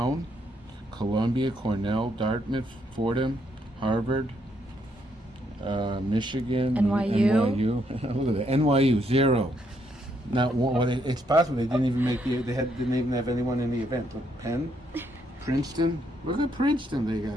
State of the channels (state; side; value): normal; both; correlation 0.74